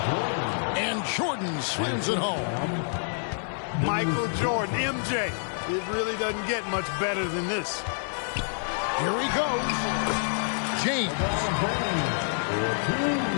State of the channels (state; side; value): silent; right; digital silence